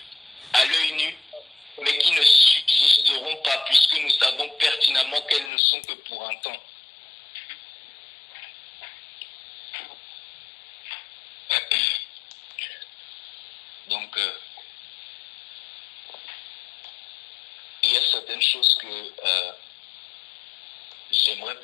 à l'œil nu, mais qui ne subsisteront pas, puisque nous savons pertinemment qu'elles ne sont que pour un temps. Donc, il y a certaines choses que j'aimerais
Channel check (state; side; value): drops out; right; at 5.5 s